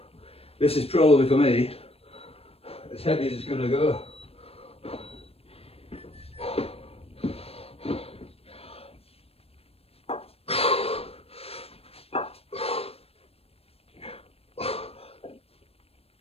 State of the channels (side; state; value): right; late; 0.28 ms